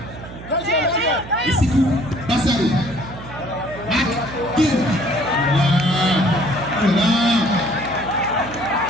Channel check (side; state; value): right; noise; hum, 14 dB below the sound